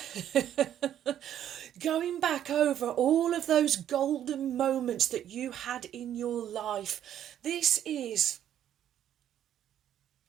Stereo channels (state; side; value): quieter; left; 10.7 dB